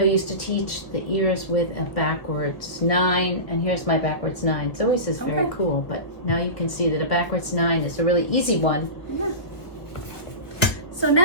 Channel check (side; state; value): right; late; 1.6 ms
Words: used to teach the ears with a backwards 9, and here's my backwards 9. It's always is very cool, but now you can see that a backwards 9 is a really easy one. Yeah. So